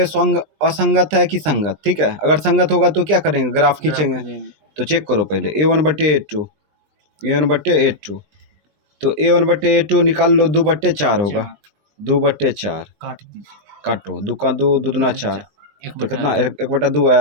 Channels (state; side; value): late; left; 20 ms